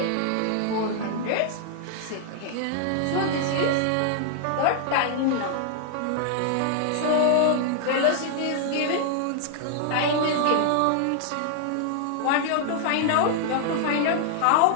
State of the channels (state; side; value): different; both; correlation 0.00